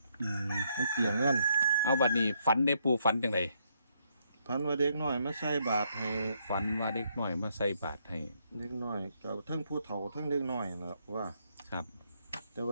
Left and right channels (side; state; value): both; inverted; correlation -0.74